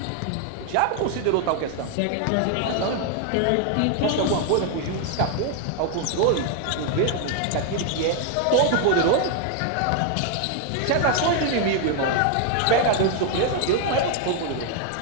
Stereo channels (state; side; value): different; both; correlation 0.01